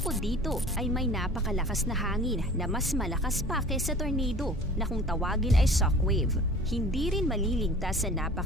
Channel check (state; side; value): normal; both; correlation 0.44